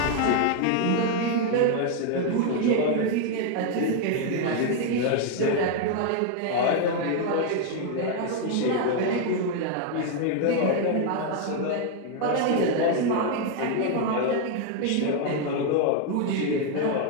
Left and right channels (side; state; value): both; different; correlation 0.00